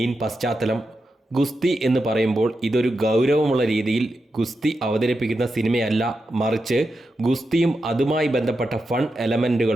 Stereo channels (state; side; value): normal; both; correlation 0.88